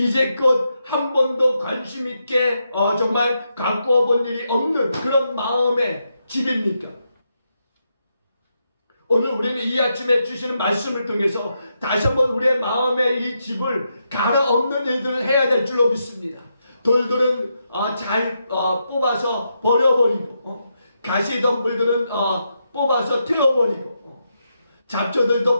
한 번도 관심 있게 정말 가꾸어 본 일이 없는 그런 마음의 집입니까? 오늘 우리는 이 아침에 주시는 말씀을 통해서 다시 한번 우리의 마음의 이 집을 갈아엎는 일들을 해야 될 줄로 믿습니다. 돌들은 잘 뽑아서 버려버리고 가시덤불들은 뽑아서 태워버리고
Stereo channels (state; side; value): inverted; both; correlation -0.83